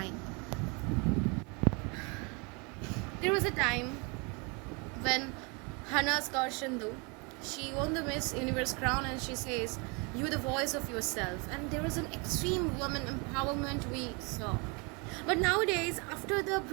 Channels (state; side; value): quieter; left; 31.0 dB